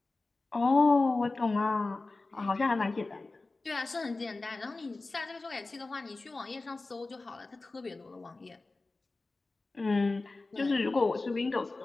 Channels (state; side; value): quieter; right; 3.4 dB